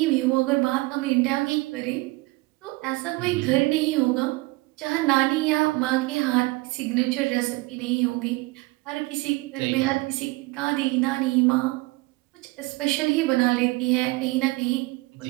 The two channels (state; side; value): quieter; left; 22.9 dB